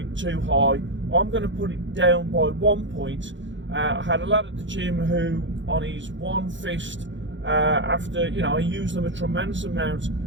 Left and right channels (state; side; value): late; left; 0.54 ms